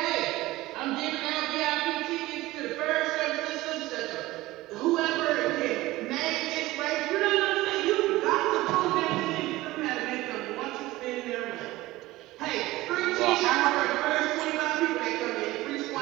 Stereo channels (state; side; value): quieter; left; 18.3 dB